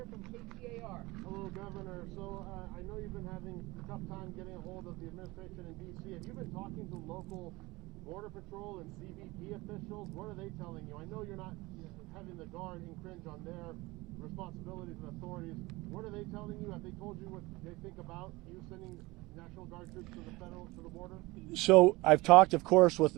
from KCAR. Hello, Governor. So I know you've been having a tough time getting a hold of the administration in D.C. Have you been talking to local Border Patrol and CBP officials? What are they telling you? I know you're not having the Guard infringe on their responsibilities and authorities. What are they telling you? Have they told you what they think about you sending National Guard troops to the border? So I've talked, of course,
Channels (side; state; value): left; quieter; 21.8 dB